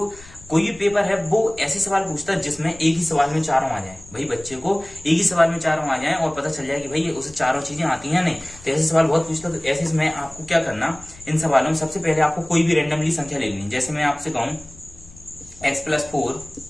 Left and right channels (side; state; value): left; noise; rumble, 22 dB below the sound